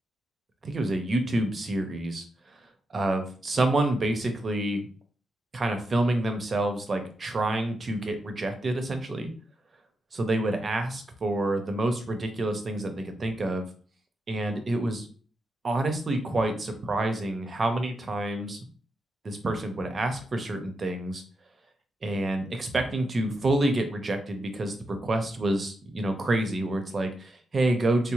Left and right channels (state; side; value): normal; both; correlation 0.86